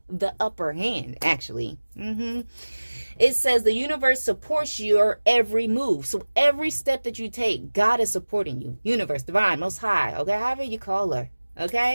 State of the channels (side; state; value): both; inverted; correlation -1.00